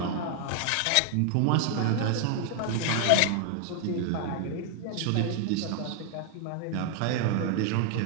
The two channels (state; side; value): different; both; correlation 0.00